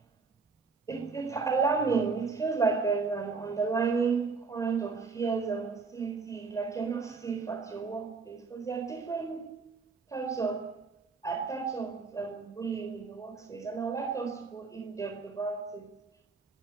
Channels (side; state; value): left; quieter; 4.7 dB